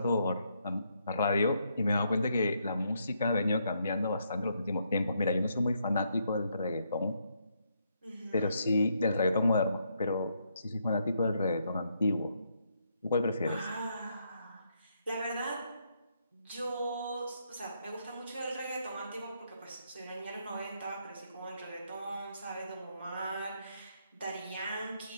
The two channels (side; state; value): both; inverted; correlation -0.76